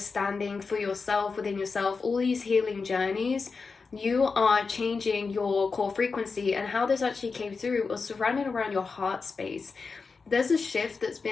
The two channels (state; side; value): quieter; right; 4.7 dB